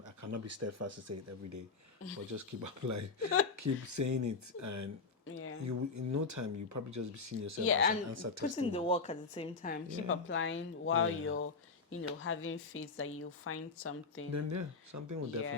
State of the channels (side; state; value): right; quieter; 4.4 dB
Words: cannot be steadfast to say it every day, but just keep applying, keep saying it, and Yeah. you in no time you probably just be seeing yourself Yeah, as an and answer putting the testimony. work at the same time. Keep Yeah. applying while Yeah. you're, having faith that you'll find something. Then yeah, something will Yeah,